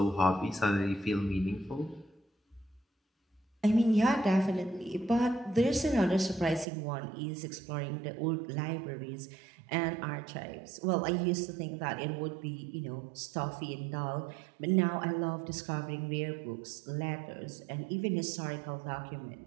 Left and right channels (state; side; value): drops out; left; at 6.7 s